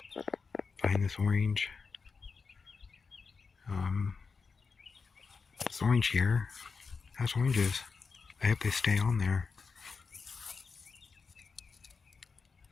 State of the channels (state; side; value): quieter; right; 4.9 dB